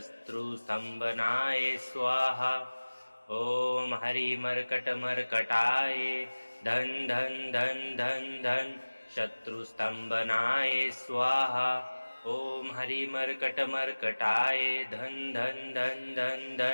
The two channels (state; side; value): inverted; both; correlation -1.00